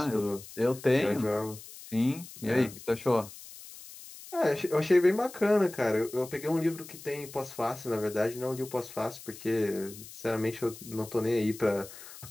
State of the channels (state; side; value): noise; left; hiss, 16 dB below the sound